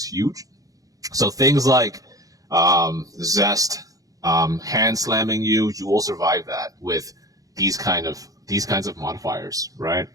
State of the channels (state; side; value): late; left; 0.17 ms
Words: huge. So things like Zest, hand slamming you will survive that with these kinds of modifiers, right?